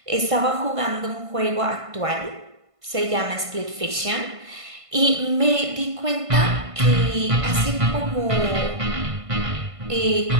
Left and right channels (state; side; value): late; left; 1.5 ms